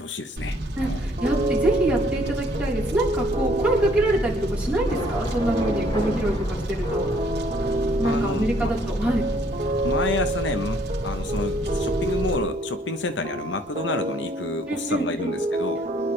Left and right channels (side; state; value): both; normal; correlation 0.63